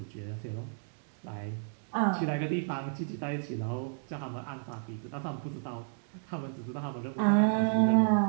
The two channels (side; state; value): left; silent; 56 dB below the other